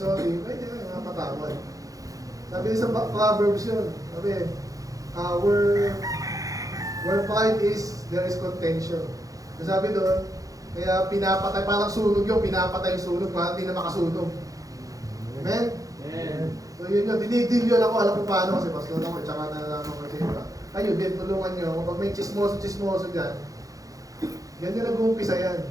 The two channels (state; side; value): late; left; 0.17 ms